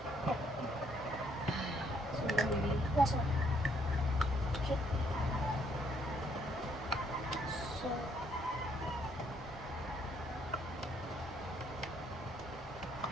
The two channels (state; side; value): normal; both; correlation 0.69